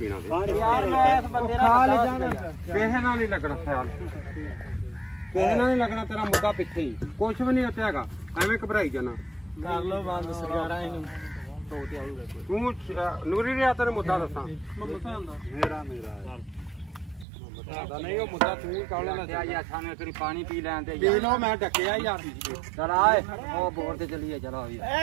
ਤੇ ਯਾਰ ਮੈਂ ਇਸ ਬੰਦੇ ਨਾਲ ਕਿਸੇ ਨਾਲ ਨਹੀਂ ਲੱਗਣਾ ਖਿਆਲ ਕਿਸੇ ਨਾਲ ਨਹੀਂ ਲੱਗਣਾ ਤੇਰਾ ਮੁੱਦਾ ਪਿੱਛੇ ਹੀ ਕੁਛ ਵੀ ਨਹੀਂ ਉੱਥੇ ਹੈਗਾ ਐਵੇਂ ਘਬਰਾਈ ਜਾਣਾ ਕਰ ਲੋ ਬੰਦ ਸਰਕਾਰਾਂ ਇਹਨੂੰ ਤੋਤੇ ਆਊਗਾ ਤੂੰ ਨੂਰੀ ਰਿਆ ਤੈਨੂੰ ਮੁੱਦਾ ਦੱਸਾਂ ਮੇਰਾ ਬਤਾਦਾ ਨਹੀਂ ਉਹ ਮੁੱਦਾ ਤੂੰ ਹੀ ਕਾਲ ਲੈਣਾ ਯਾਰ ਸਾਨੂੰ ਇੱਕ ਵਾਰੀ ਪਾਣੀ ਪੀ ਲੈਣ ਤੇ ਪੀ ਲਓ ਮੈਂ ਡੱਕਿਆ ਯਾਰ ਚਲ ਆਏ ਉਹ ਬੋਰ ਤੇ ਚੱਲੀਏ ਚਲੋ ਵੀ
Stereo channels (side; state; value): left; drops out; at 17.2 s